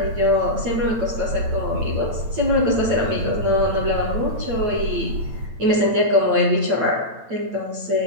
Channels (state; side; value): late; left; 8.9 ms